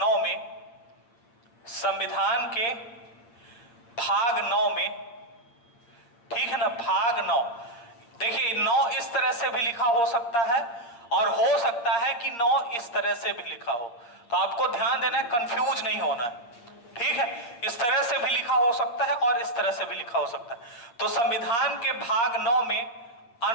9 में, ठीक है ना, भाग 9, देखिए 9 इस तरह से भी लिखा हो सकता है और हो सकता है कि 9 इस तरह से भी लिखा हो। तो आपको ध्यान देना है, कंफ्यूज नहीं होना है। ठीक है, इस तरह से भी लिखा हो सकता है और इस तरह से भी लिखा हो सकता है। तो संविधान के भाग 9 में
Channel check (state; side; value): late; right; 8.6 ms